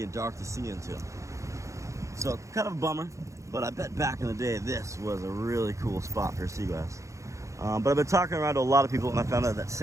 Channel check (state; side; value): late; left; 0.15 ms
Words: and dark to see into. So kind of a bummer. But I bet back in the day, this was a really cool spot for sea glass. But I've been talking around to a lot of people, and I found out that